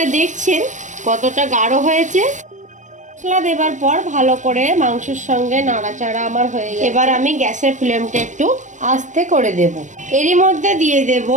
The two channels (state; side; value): late; left; 0.35 ms